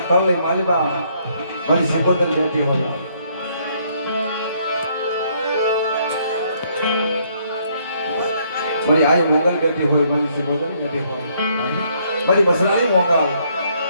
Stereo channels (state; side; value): inverted; both; correlation -0.68